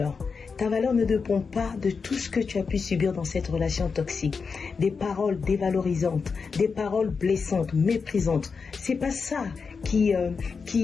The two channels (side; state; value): right; quieter; 5.2 dB